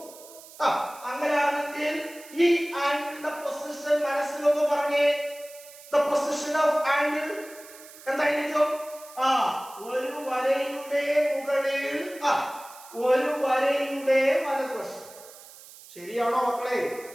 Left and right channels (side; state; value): right; noise; hiss, 19 dB below the sound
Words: അങ്ങനെയാണെങ്കിൽ ഈ ആംഗിളിന്റെ പൊസിഷൻ മനസ്സിലൊന്ന് പറഞ്ഞേ. ദ പൊസിഷൻ ഓഫ് ആംഗിൾ എന്തായിരിക്കും? ഒരു വരയുടെ മുകളിൽ ഒരു വരയുടെ വലതുവശം. ശരിയാണോ മക്കളെ?